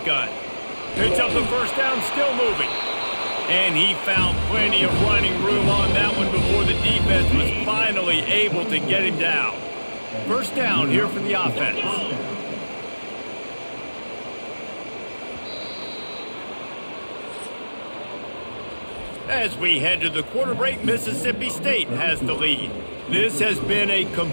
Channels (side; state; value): both; inverted; correlation -1.00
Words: Picks up the first down, still moving. And he found plenty of running room on that one before the defense was finally able to get him down. First down here for the offense. As we head to the quarter break, Mississippi State has the lead. This has been a